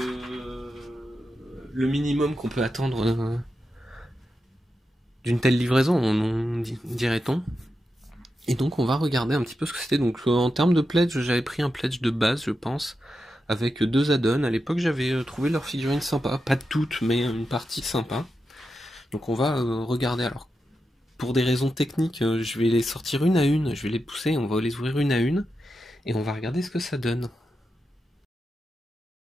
minimum qu'on peut attendre d'une telle livraison, dirait-on. Et donc, on va regarder un petit peu ce que c'était. Donc, en termes de pledge, j'avais pris un pledge de base, je pense, avec 2 add-ons. À l'époque, j'avais trouvé leurs figurines sympas. Pas toutes, mais une partie sympa. Donc, on va regarder. Alors, pour des raisons techniques, je vais les sortir une à une. Je vais les pousser, on va les ouvrir une à une. Et on va regarder ce que ça donne.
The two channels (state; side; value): normal; both; correlation 0.89